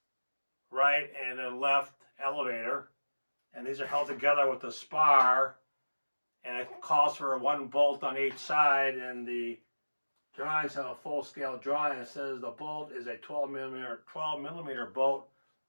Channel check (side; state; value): both; inverted; correlation -1.00